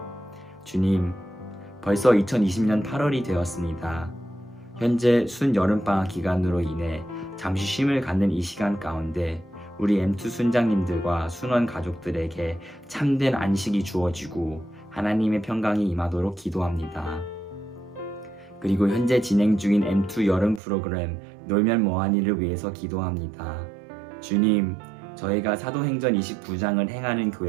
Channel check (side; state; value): left; drops out; at 20.6 s